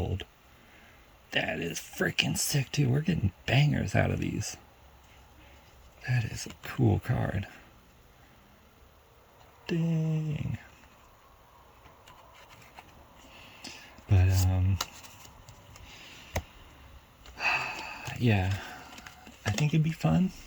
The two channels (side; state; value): both; identical; correlation 1.00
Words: That is freaking sick too. We're getting bangers out of these. That is a cool card. Dang. But yeah, I think it'd be fun,